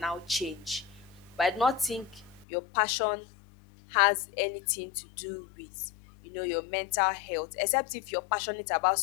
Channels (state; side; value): drops out; right; at 2.5 s